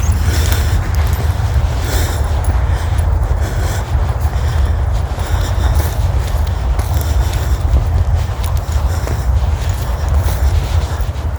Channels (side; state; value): both; identical; correlation 1.00